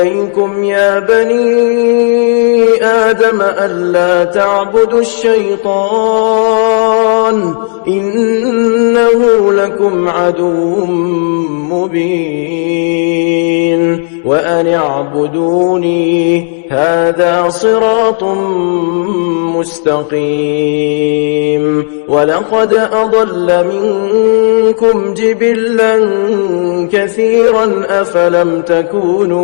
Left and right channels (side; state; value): right; silent; digital silence